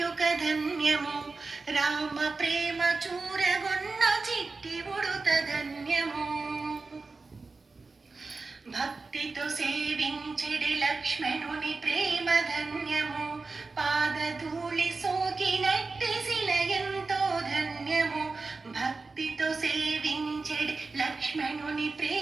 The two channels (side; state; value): left; quieter; 3.9 dB